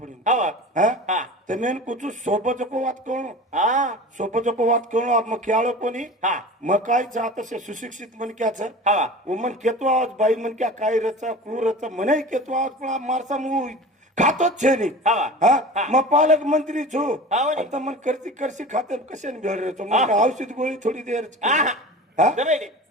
पडेल हा वा. हा हा ते मेन कुचू सोपचको वात कळणो हा सोपचको वात कळणो मग खेळो कोणी हा मग काय जात असे सुशिक्षित मनक्याच हा वा. मन केतो आवाज बाई मनक्या काय रचा क्रूर रचा मने केतो आवाज पण मारसा मु खातोच छे नी हा वा. हा मग पालक मंत्री छो हा हो नी. आता मन करती करशी खाते कशाने भेळ रेचो हा. मग औषध गोळी थोडी देर हा हा हा जमेली.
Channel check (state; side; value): normal; both; correlation 0.35